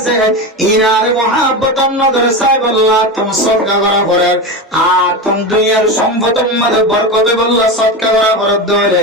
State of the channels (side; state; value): both; normal; correlation 0.20